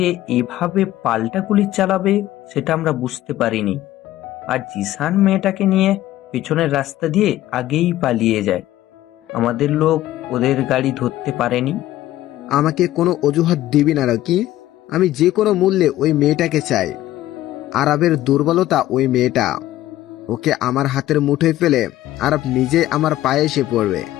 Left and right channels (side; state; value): right; quieter; 14.6 dB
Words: এভাবে পাল্টা গুলি চালাবে সেটা আমরা বুঝতে পারিনি। আর জিসান মেয়েটাকে নিয়ে পেছনের রাস্তা দিয়ে আগেই পালিয়ে যায়। আমাদের লোক ওদের গাড়ি ধরতে পারেনি। আমাকে কোনো অজুহাত দিবি না রকি। আমি যে কোনো মূল্যে ওই মেয়েটাকে চাই। আরবের দুর্বলতা ওই মেয়েটা। ওকে আমার হাতের মুঠোয় ফেলে আরব নিজে আমার পায়ে এসে পড়বে।